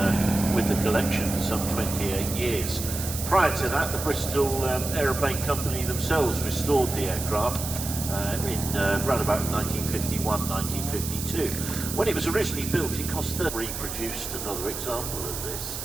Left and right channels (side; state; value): right; noise; hiss, 6 dB below the sound